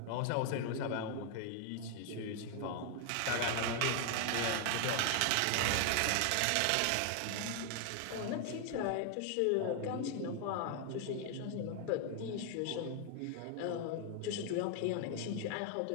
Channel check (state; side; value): different; both; correlation 0.00